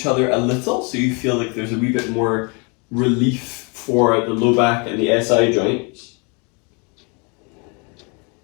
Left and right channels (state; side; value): quieter; right; 33.0 dB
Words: other a little, so you feel like there's a wee bit more relief for the low back and the SI joints.